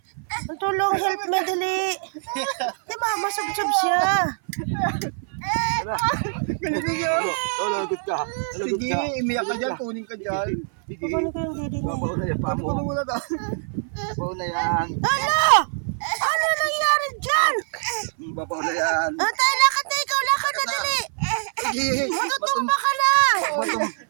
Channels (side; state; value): left; silent; 56 dB below the other